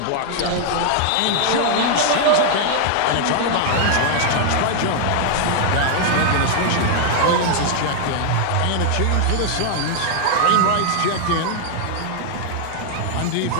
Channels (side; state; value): both; different; correlation 0.00